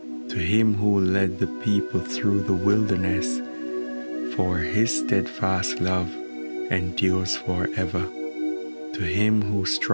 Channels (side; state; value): both; inverted; correlation -1.00